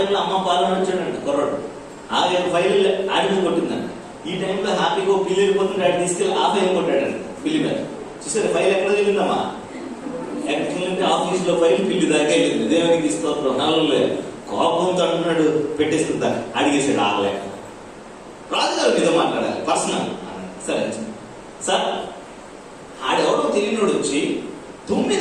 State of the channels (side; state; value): both; identical; correlation 1.00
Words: అమ్మ పాలన వచ్చాడంట కుర్రాడు. ఆ ఫైల్ ఆడి మీద కొట్టిందంట. ఈ టైంలో హ్యాపీగా పిల్లి వెళ్ళిపోతుంటే ఆడి తీసుకెళ్ళి ఆ ఫైల్ కొట్టాడంట పిల్లి మీద. చూసారు ఫైల్ ఎక్కడ వెళ్ళిందమ్మా? ఎక్కడికి వెళ్ళింటే ఆఫీస్లో ఫైల్ పిల్లి దాకా వెళ్ళింది. దేవునికి స్తోత్రం. నల్లలే కోపంతో అంటున్నాడు, పెట్టేస్తుందా అడిగేసాడు. ఆగలేక రాజుగారు మీద మాట్లాడాలి పర్సనల్. సరే సార్, ఆడెవడో తెలియనోడు వచ్చి